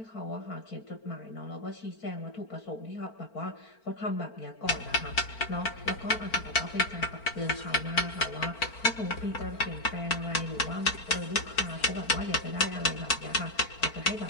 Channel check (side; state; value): right; late; 4.5 ms